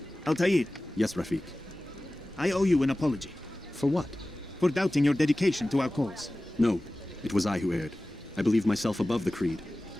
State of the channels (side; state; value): both; normal; correlation 0.97